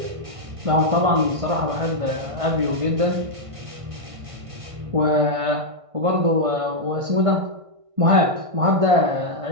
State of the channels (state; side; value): late; left; 1.6 ms